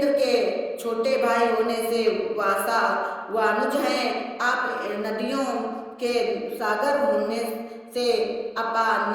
के छोटे भाई होने से वासा वानुज हैं। आप नदियों के सागर होने से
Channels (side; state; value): both; identical; correlation 1.00